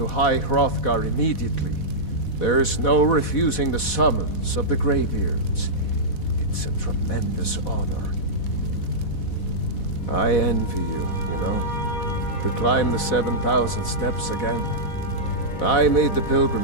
High Hrothgar immediately. There's no refusing the summons of the Greybeards. It's a tremendous honor. I envy you, you know, to climb the 7,000 steps again. I made the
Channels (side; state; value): right; late; 4.1 ms